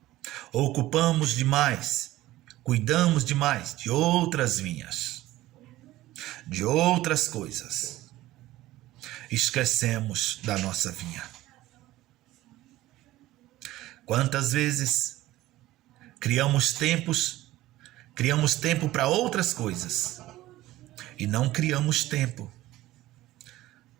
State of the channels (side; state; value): left; quieter; 16.3 dB